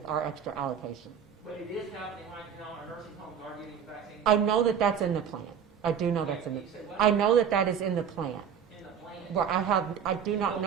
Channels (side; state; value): left; quieter; 7.8 dB